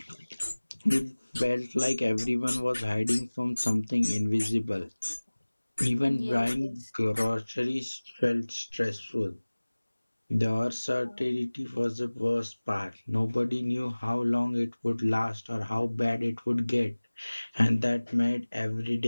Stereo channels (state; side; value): inverted; both; correlation -1.00